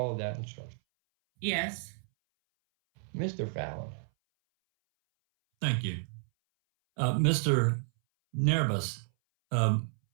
that instruction? Yes. Mr. Fallon. Thank you. Mr. Nerbus,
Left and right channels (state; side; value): silent; left; 57 dB below the other